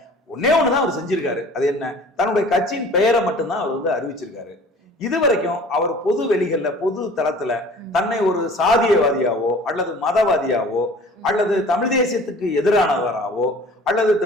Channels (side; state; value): both; normal; correlation 0.46